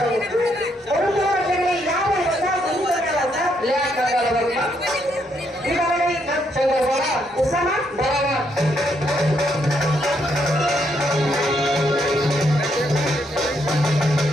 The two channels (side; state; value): both; normal; correlation 0.75